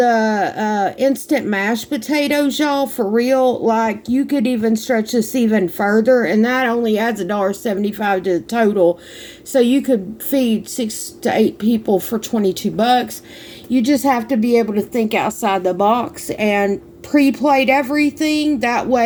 instant mashed potatoes, y'all, for real, like, you could even stretch this even further, and that only adds $1.75 to the total. So you could feed 6 to 8 people for $22. You just have to be able to think outside the box and pre-plate everything. That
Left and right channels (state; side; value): identical; both; correlation 1.00